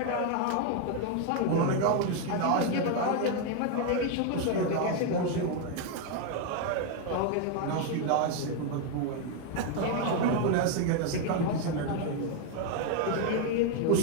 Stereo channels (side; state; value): both; different; correlation 0.01